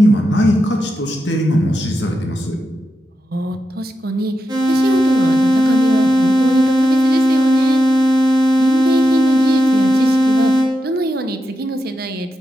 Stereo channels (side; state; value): both; normal; correlation 0.87